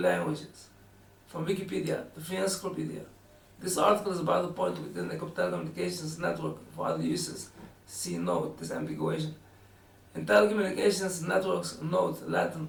from Wikipedia, the Free Encyclopedia. This article is about the point within the telecommunications network for other uses. See node, disambiguation. In telecommunications networks, node,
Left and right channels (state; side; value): identical; both; correlation 1.00